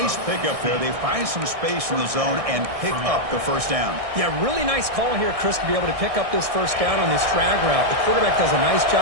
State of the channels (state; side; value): late; left; 1.6 ms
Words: pickup there. They find some space in the zone and pick up the first down. Yeah, really nice call here, Chris, to be able to pick up this first down on this drag route. The quarterback does a nice